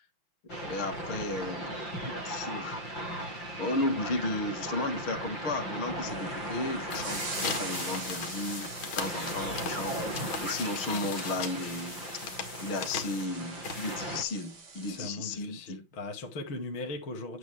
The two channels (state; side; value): late; right; 6.2 ms